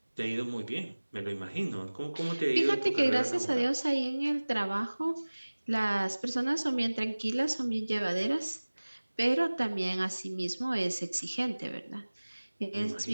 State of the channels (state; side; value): inverted; both; correlation -1.00